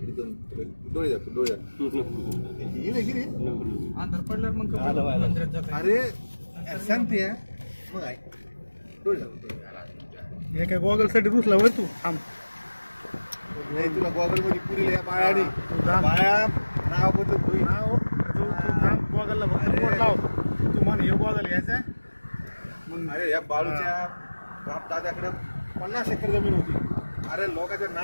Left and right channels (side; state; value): both; inverted; correlation -1.00